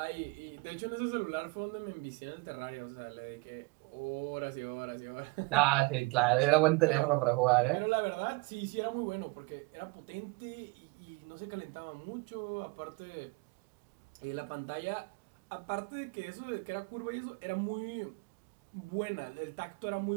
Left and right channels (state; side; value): quieter; left; 25.7 dB